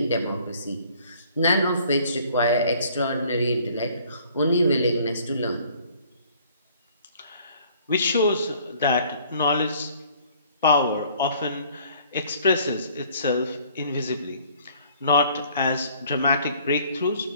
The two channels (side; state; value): both; inverted; correlation -0.57